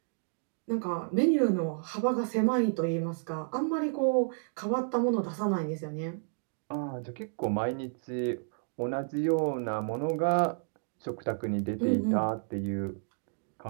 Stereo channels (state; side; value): silent; left; digital silence